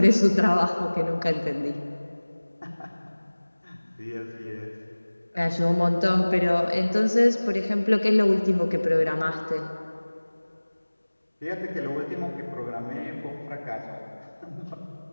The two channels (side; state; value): both; inverted; correlation -1.00